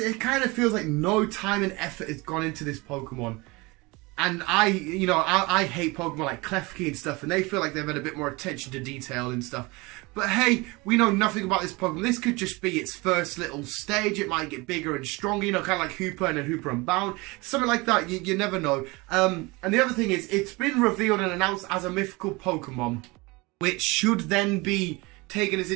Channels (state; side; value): quieter; left; 24.5 dB